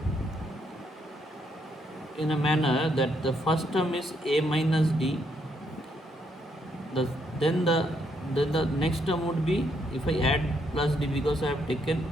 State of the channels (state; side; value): normal; both; correlation 0.74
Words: in a manner that the first term is a minus d, the then the then the next term would be, if I add plus d, because I have taken